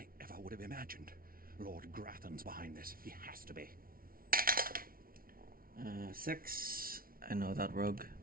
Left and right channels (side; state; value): left; late; 0.43 ms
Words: ever would have imagined. Lord Grathan's behind this. He has to be. 6. I know that rogue.